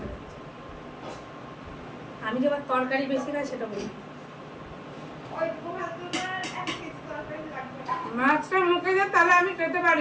আমি যে আবার তরকারি বেশি খাই সেটা বলি। মাছটা মুখে যায় তাহলে আমি খেতে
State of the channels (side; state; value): both; identical; correlation 1.00